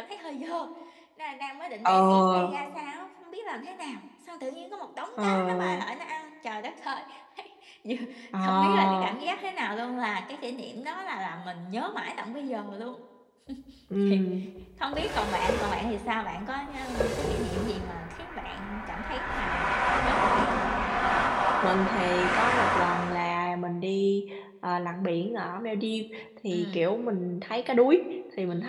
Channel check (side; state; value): both; identical; correlation 1.00